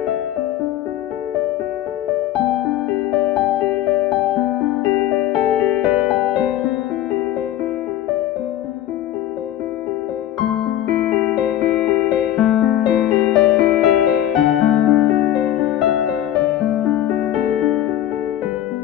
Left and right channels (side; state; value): right; quieter; 12.5 dB